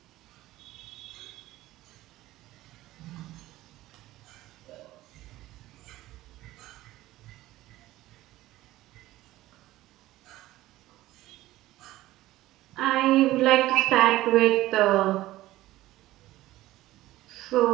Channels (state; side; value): quieter; left; 16.3 dB